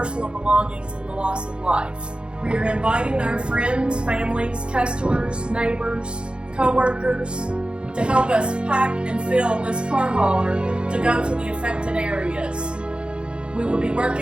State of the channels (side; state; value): left; late; 0.054 ms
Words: belongings, and the loss of life. We are inviting our friends, families, customers, neighbors, co-workers to help us pack and fill this car hauler to go to the affected areas. We will be